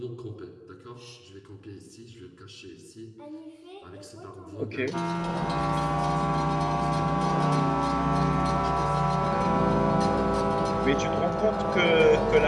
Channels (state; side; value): identical; both; correlation 1.00